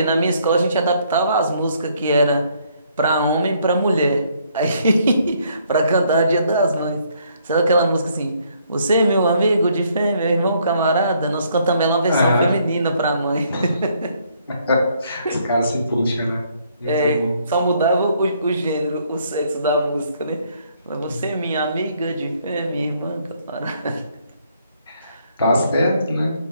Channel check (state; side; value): inverted; both; correlation -0.68